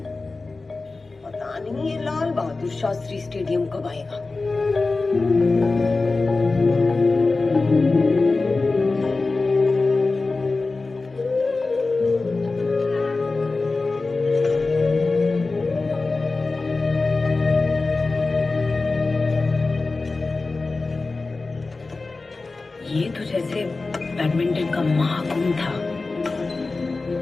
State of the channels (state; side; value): quieter; right; 3.6 dB